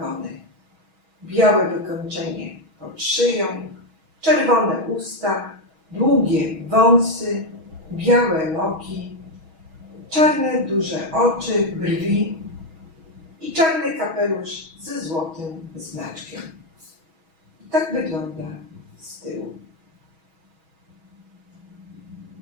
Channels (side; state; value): left; late; 6.2 ms